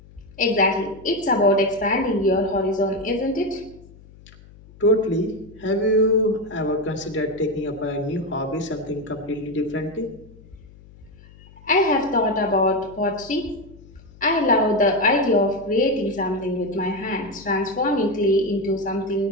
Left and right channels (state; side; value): noise; left; hum, 23 dB below the sound